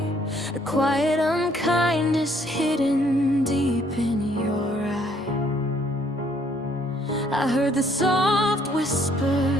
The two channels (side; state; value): both; normal; correlation 0.65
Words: a quiet unkindness hidden deep in your eye. I heard the soft